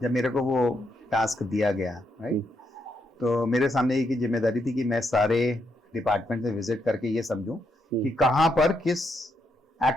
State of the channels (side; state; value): both; normal; correlation 0.79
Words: मेरे को वो टास्क दिया गया, राइट, तो मेरे सामने एक जिम्मेदारी थी कि मैं सारे डिपार्टमेंट में विजिट करके ये समझूं कि कहां पर किस